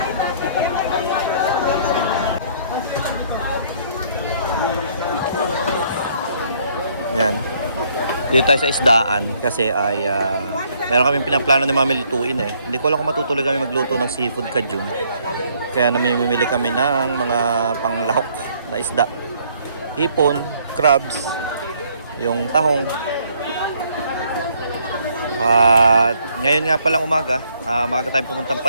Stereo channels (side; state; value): both; inverted; correlation -0.65